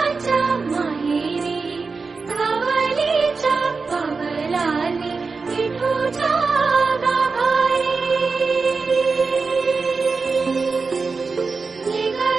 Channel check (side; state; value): left; quieter; 4.5 dB